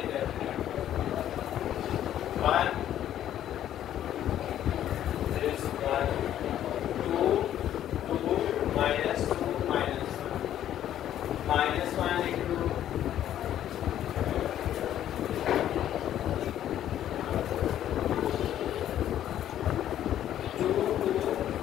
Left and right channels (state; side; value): quieter; right; 11.4 dB